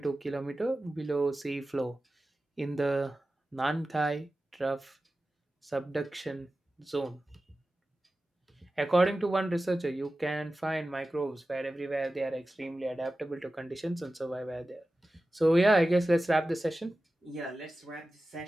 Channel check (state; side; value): normal; both; correlation 0.95